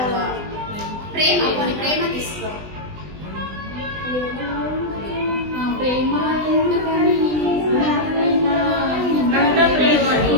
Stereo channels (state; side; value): late; left; 20 ms